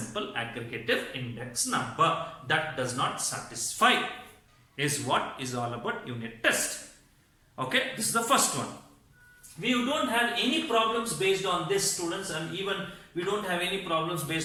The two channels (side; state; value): both; identical; correlation 1.00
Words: aggregative index number. That does not satisfy, is what is all about unit test. Okay, this is the first one. We don't have any problems based on this, students, and even we don't have any problems